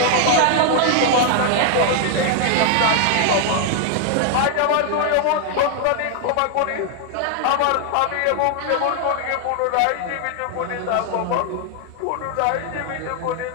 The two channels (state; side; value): different; both; correlation 0.00